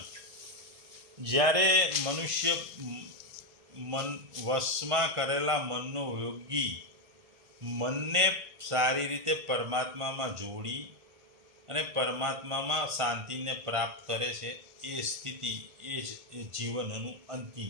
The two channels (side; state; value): left; late; 1.5 ms